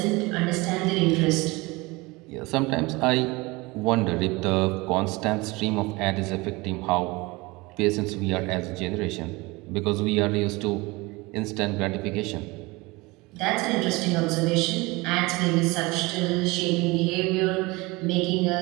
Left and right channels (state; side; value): quieter; left; 23.6 dB